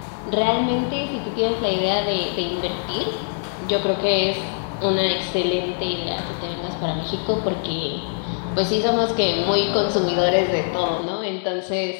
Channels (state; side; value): silent; right; digital silence